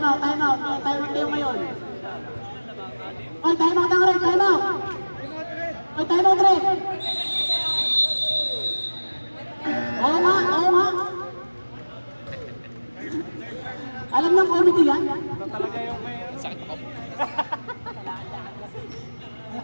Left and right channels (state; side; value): inverted; both; correlation -1.00